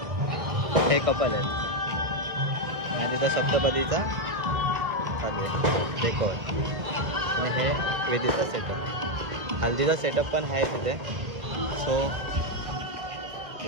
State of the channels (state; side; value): late; left; 1.6 ms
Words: हे कपल आहेत आणि तिथं सप्तपदीचा चालू आहे डेकोर आणि हे वेदीचा सेटअप, हल्दीचा सेटअप पण आहे तिथे. सो